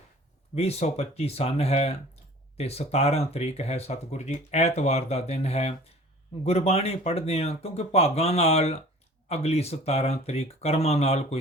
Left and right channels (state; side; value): normal; both; correlation 0.46